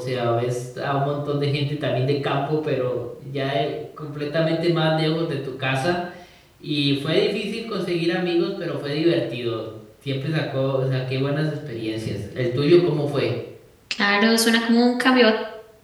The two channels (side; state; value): both; identical; correlation 1.00